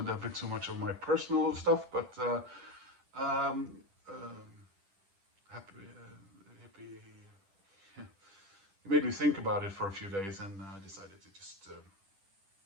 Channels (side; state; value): left; late; 10 ms